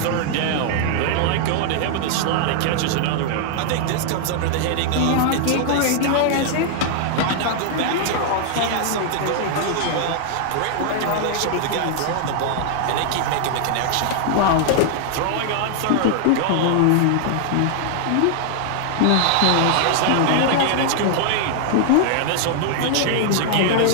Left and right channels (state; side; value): different; both; correlation 0.00